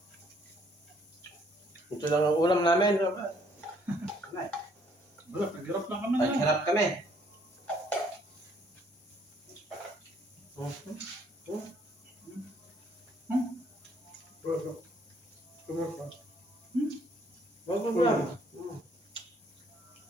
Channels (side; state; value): both; normal; correlation 0.65